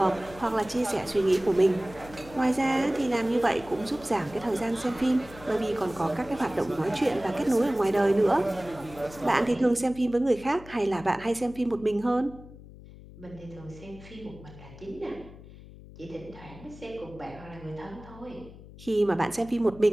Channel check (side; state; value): left; noise; hum, 18 dB below the sound